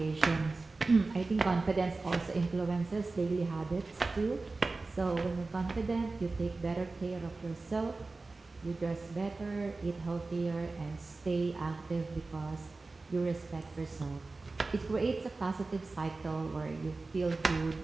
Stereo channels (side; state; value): left; quieter; 3.6 dB